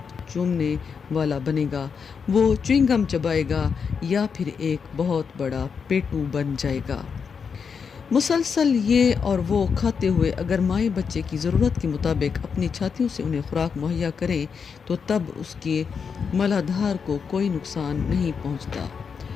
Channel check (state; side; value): quieter; right; 6.1 dB